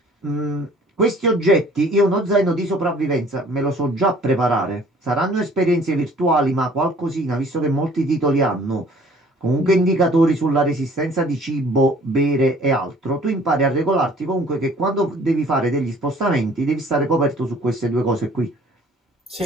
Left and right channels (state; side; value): normal; both; correlation 0.54